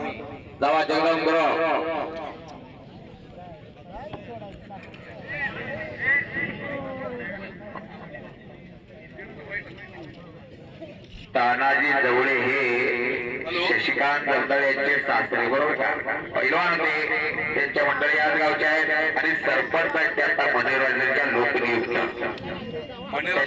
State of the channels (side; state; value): both; identical; correlation 1.00